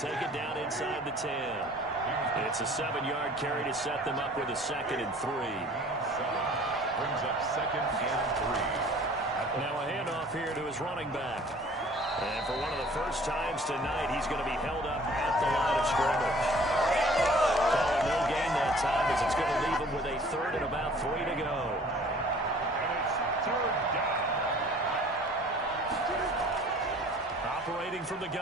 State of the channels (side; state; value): both; normal; correlation 0.51